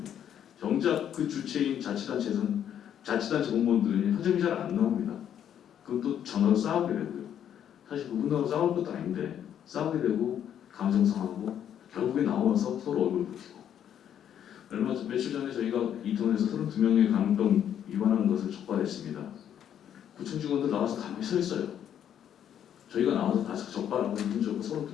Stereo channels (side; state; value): right; quieter; 9.7 dB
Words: 정작 그 주체인 자치단체 공무원들은 현장이 잘 안 나옵니다. 그럼 또 전화로 싸우게 되고요. 사실 그분하고 싸울 것도 아닌데 싸우게 되고 감정 상하고 결국에 나와서 서로 얼굴 붉히고. 며칠 전에 저희가 이태원에서 32명의 감염병 위반하는 것을 적발했습니다. 구청 직원들 나와서 가만히 서 있어요. 저희가 나와서 다시 적발하고 문제고